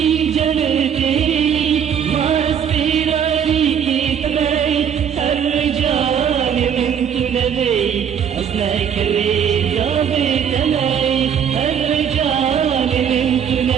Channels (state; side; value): quieter; left; 8.2 dB